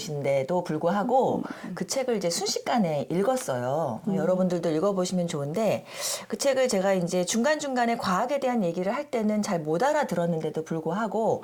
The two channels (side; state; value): both; identical; correlation 1.00